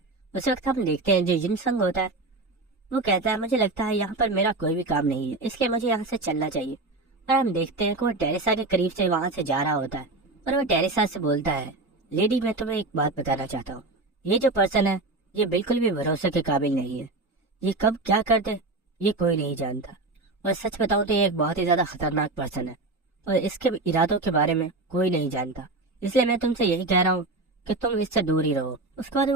اس وقت ہم دیکھتے ہیں جو جن سنگ ہوتا ہے وہ کہتا ہے مجھے لگتا ہے یہاں پر میرا کوئی بھی کام نہیں ہے، اس لیے مجھے یہاں سے چلنا چاہیے. اور ہم دیکھتے ہیں کہ وہ ٹیریسا کے قریب سے وہاں سے جا رہا ہوتا ہے اور وہ ٹیریسا سے بولتا ہے لیڈی میں تمہیں ایک بات بتانا چاہتا ہوں، یہ جو پرسن ہے یہ بالکل بھی بھروسے کے قابل نہیں ہے. یہ کب کیا کر دے یہ کوئی نہیں جانتا، اور سچ بتاؤں تو یہ ایک بہت ہی زیادہ خطرناک پرسن ہے اور اس کے ارادوں کے بارے میں کوئی نہیں جانتا. اس لیے میں تم سے یہی کہہ رہا ہوں کہ تم اس سے دور ہی رہو. اس کے بعد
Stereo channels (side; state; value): left; quieter; 3.2 dB